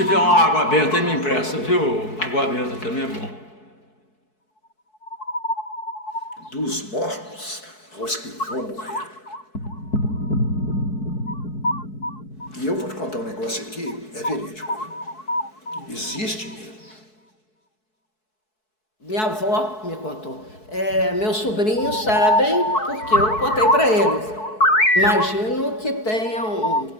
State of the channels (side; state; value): right; late; 4.6 ms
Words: uma água benta aí, me empresta, viu? Água benta também é bom. Dos mortos aos que vão morrer. E eu vou te contar um negócio aqui, é verídico. Existe mesmo. Minha avó me contou. Meus sobrinhos sabem porque eu contei para eles. Imagino que tenham